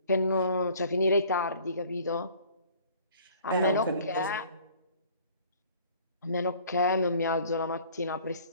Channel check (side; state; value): both; inverted; correlation -0.52